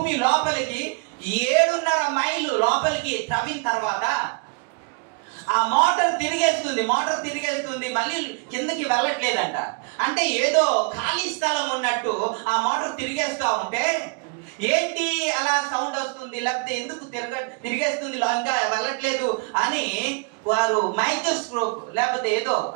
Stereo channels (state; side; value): quieter; left; 32.1 dB